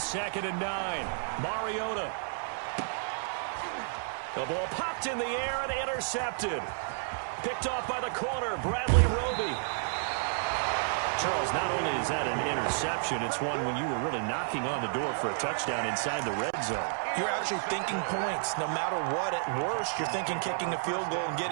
and 9, Mariota. The ball popped in the air and intercepted. Picked off by the corner, Bradley Roby. Charles, not only is that an interception, it's one when you were really knocking on the door for a touchdown inside the red zone. You're actually thinking points. No matter what, at worst, you're thinking kicking a field goal and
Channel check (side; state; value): left; silent; 55 dB below the other